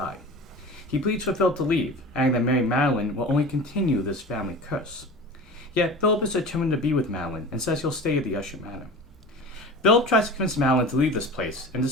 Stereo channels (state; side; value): normal; both; correlation 0.35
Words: He pleads for Philip to leave, adding that marrying Madeline will only continue this family curse. Yet, Philip is determined to be with Madeline and says he'll stay at the Usher Manor. Philip tries to convince Madeline to leave this place, and